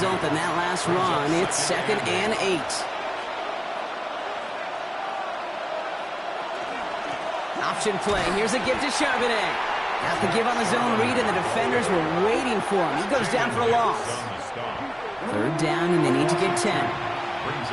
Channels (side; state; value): both; identical; correlation 1.00